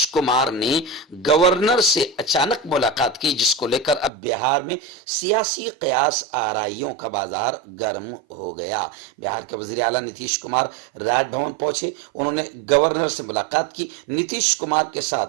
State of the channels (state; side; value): drops out; left; at 4.1 s